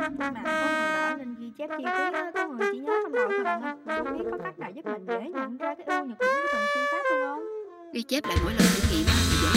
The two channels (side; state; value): both; identical; correlation 1.00